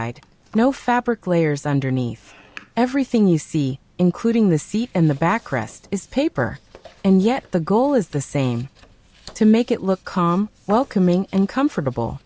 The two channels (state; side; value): identical; both; correlation 1.00